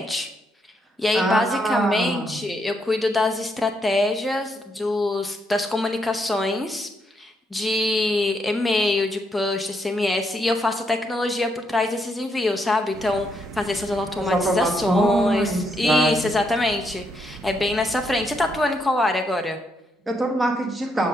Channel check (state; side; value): normal; both; correlation 0.77